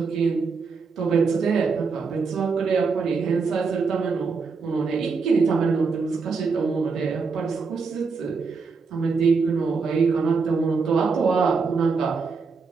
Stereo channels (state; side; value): quieter; left; 4.9 dB